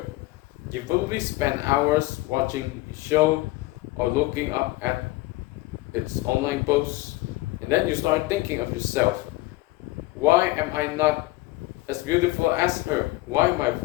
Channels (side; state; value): right; quieter; 19.6 dB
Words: You probably spend hours watching a show or looking up at its online posts, and then you start thinking of yourself. Why am I not as beautiful as her? Why my